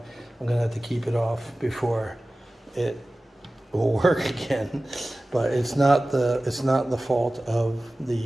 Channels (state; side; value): normal; both; correlation 0.97